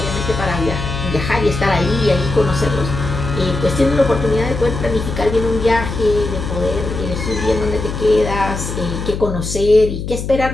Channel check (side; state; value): left; noise; hum, 6 dB below the sound